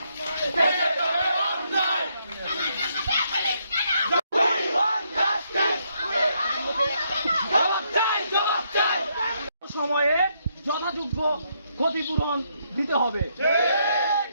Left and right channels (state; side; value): inverted; both; correlation -0.75